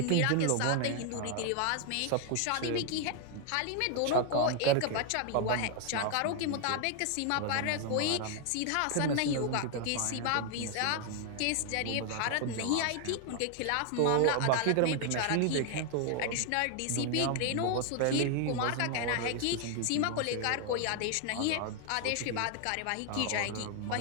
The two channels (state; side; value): different; both; correlation 0.00